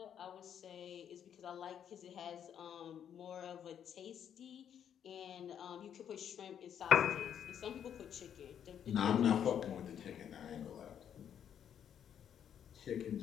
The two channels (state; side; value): quieter; right; 9.0 dB